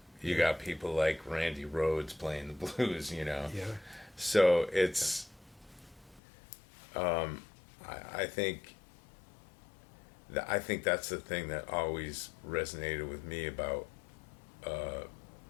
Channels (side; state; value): right; drops out; at 6.2 s